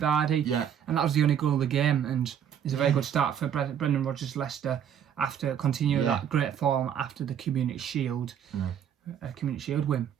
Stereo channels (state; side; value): quieter; left; 8.9 dB